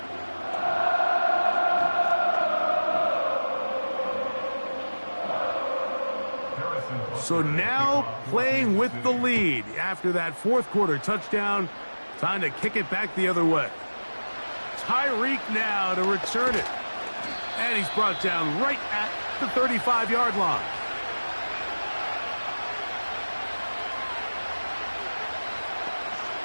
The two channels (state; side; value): inverted; both; correlation -1.00